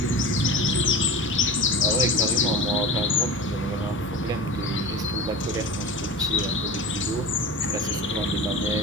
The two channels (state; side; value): normal; both; correlation 0.32